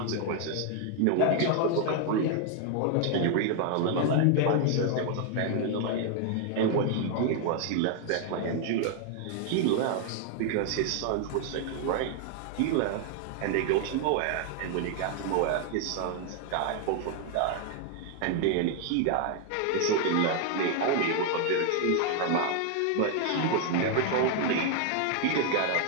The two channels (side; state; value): both; different; correlation 0.00